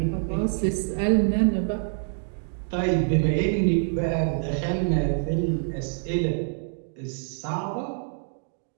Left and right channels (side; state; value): left; silent; digital silence